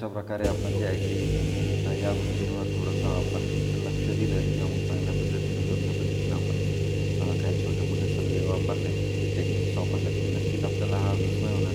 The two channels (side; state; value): both; identical; correlation 1.00